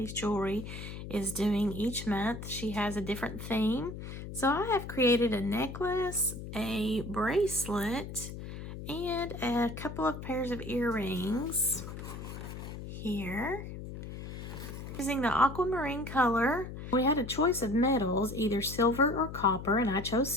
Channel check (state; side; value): noise; left; hum, 9 dB below the sound